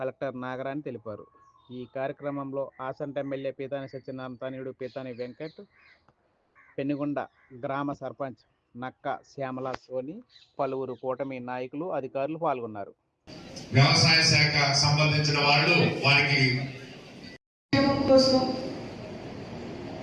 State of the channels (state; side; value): identical; both; correlation 1.00